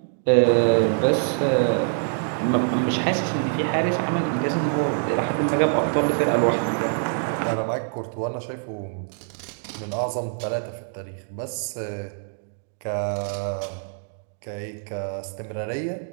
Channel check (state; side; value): silent; left; 62 dB below the other